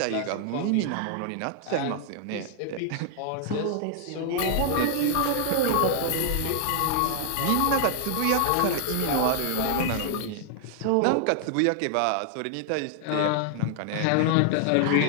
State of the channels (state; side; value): different; both; correlation 0.00